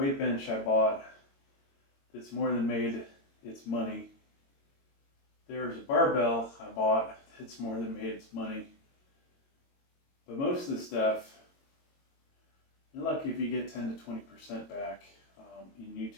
bench I bought that's more than made its money. There's a barbell I bought that's more than made its money. But most of the stuff, you're lucky if you get 10 to 20% back in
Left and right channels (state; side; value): late; right; 22 ms